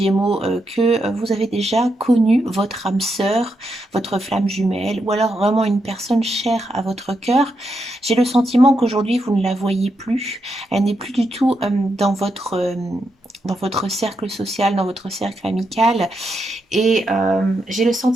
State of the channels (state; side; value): normal; both; correlation 0.83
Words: que vous avez déjà connu votre âme sœur, votre flamme jumelle, ou alors vraiment une personne chère à votre cœur. J'ai le sentiment qu'aujourd'hui, vous ne la voyez plus. Elle n'est plus du tout dans votre cercle social, dans votre cercle amical. Et j'ai le